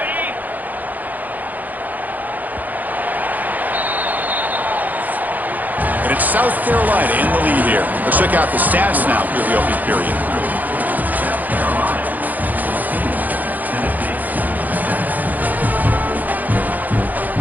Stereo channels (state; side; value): late; left; 0.082 ms